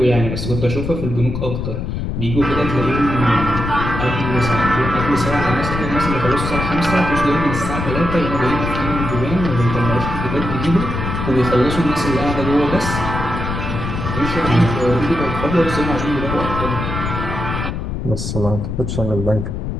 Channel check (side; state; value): left; noise; rumble, 4 dB below the sound